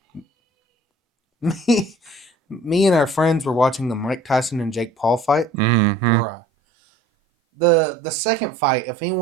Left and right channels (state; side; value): drops out; left; at 5.5 s